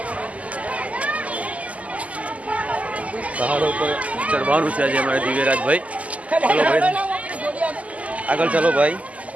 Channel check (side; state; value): left; late; 0.070 ms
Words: પહાડો પર ચડવાનું છે આજે અમારે દિવ્યરાજભાઈ ચલો ભાઈ આગળ ચાલો ભાઈ